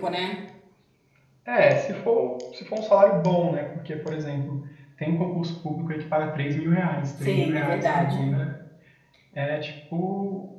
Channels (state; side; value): identical; both; correlation 1.00